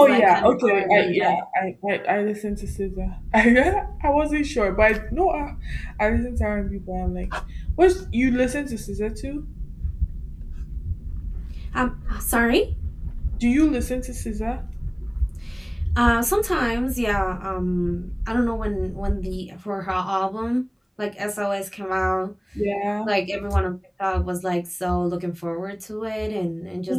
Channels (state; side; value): identical; both; correlation 1.00